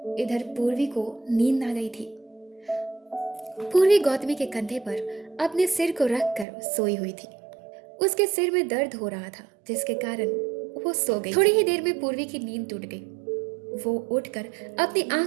इधर पूर्वी को नींद आ गई थी। पूर्वी गौतमी के कंधे पर अपने सिर को रखकर सोई हुई थी। उसके सिर में दर्द हो रहा था जिसके कारण वो सो गई। थोड़ी ही देर में पूर्वी की नींद टूट गई। वो उठकर अपनी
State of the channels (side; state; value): left; drops out; at 6.5 s